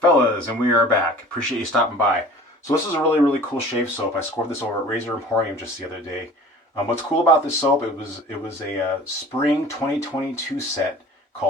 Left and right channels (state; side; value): normal; both; correlation 0.45